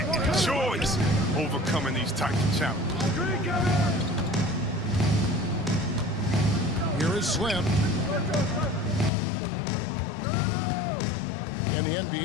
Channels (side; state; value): right; drops out; at 9.1 s